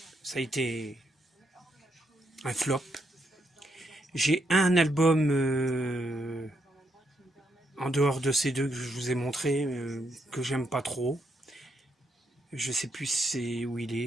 ça a été un flop. J'ai un album en dehors de ces 2 que je vous ai montré, que j'aime pas trop. Je sais plus c'est où il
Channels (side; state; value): both; normal; correlation 0.78